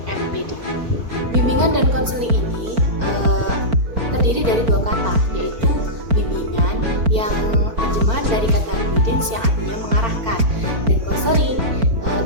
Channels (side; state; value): left; late; 4.4 ms